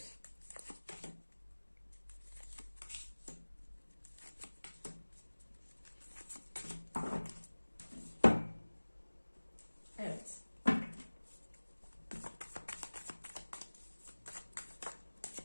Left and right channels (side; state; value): both; inverted; correlation -1.00